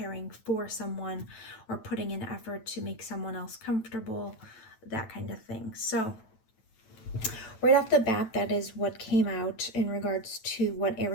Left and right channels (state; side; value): late; right; 9.1 ms